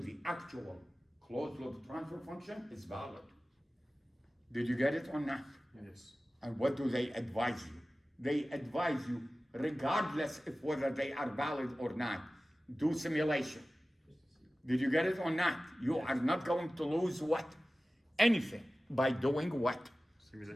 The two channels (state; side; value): normal; both; correlation 0.96